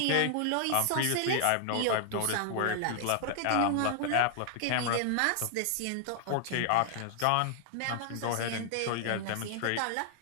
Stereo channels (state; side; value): different; both; correlation 0.00